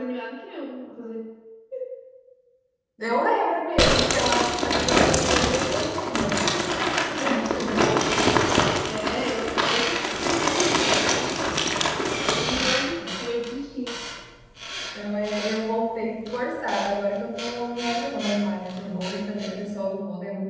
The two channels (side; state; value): both; identical; correlation 1.00